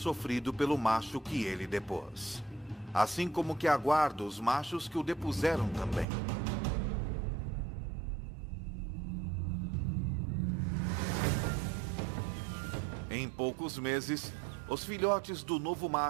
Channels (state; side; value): drops out; left; at 6.1 s